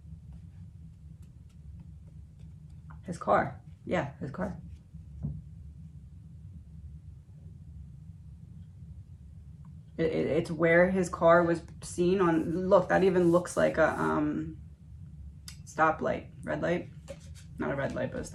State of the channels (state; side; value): identical; both; correlation 1.00